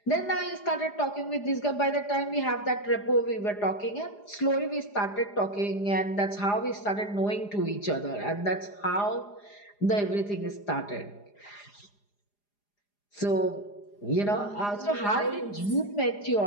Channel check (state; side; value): late; right; 4.9 ms